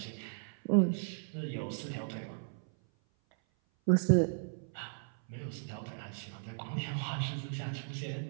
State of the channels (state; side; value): silent; left; 54 dB below the other